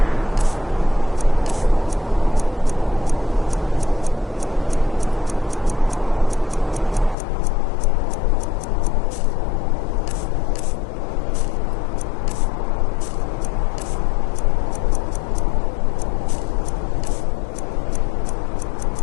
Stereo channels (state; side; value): drops out; right; at 7.2 s